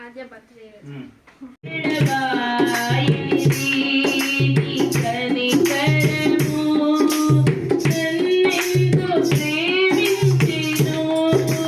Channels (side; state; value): both; identical; correlation 1.00